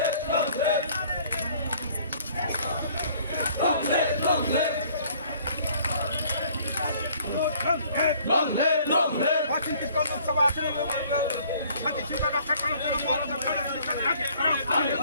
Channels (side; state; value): both; inverted; correlation -0.57